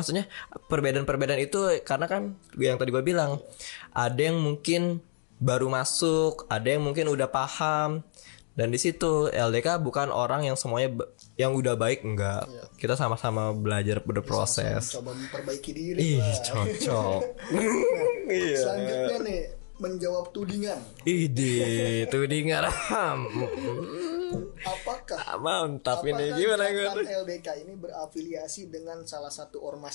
perbedaan itu karena kan yang tadi gua bilang, ada yang mungkin baru masuk, ada yang mungkin udah paham. Dan di situ LDK bukan orang yang semuanya yang udah baik, enggak. Kita sama-sama belajar berproses. Sama-sama mencoba memperbaiki diri lah. Cocok. Nah, selanjutnya nih, menjawab tudingan. Tudingan. Apakah gerakan LDK ini berafiliasi dengan salah satu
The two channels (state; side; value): silent; right; digital silence